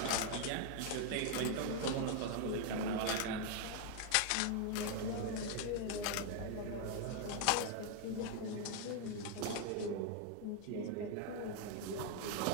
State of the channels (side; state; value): both; different; correlation 0.00